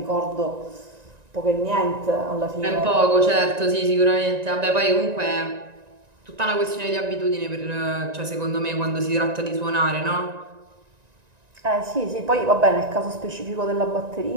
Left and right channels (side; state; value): left; late; 1.9 ms